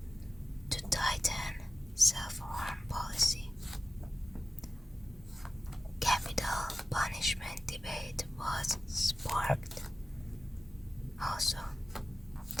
to tighten self-harm policy. Capital punishment debate was sparked also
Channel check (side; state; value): both; normal; correlation 0.95